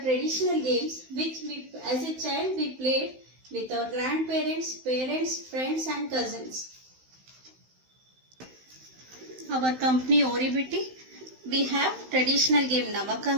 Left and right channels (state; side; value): late; left; 16 ms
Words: traditional games which as a child we played with our grandparents, parents, friends and cousins. Our company Oribiti, we have traditional game